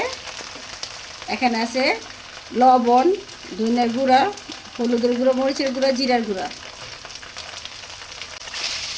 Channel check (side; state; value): both; identical; correlation 1.00